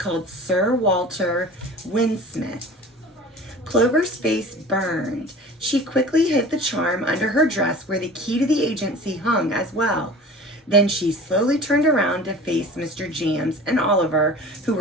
Sir Walter Windsmith. Clover's face burned. She quickly hid the charm under her dress where the key to the agency hung as well. Then she slowly turned around to face Mr. Jams and Oliver, who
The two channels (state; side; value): normal; both; correlation 0.40